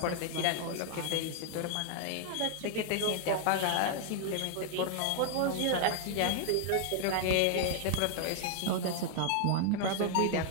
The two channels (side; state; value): both; different; correlation 0.00